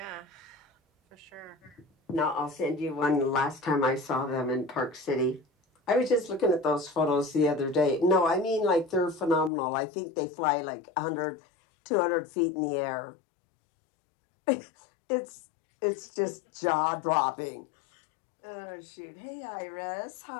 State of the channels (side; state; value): right; drops out; at 9.5 s